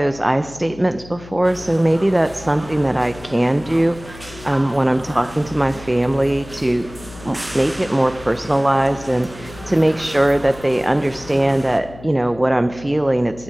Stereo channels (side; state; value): left; noise; hum, 18 dB below the sound